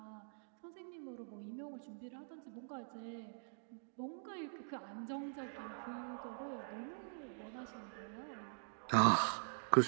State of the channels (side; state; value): left; silent; digital silence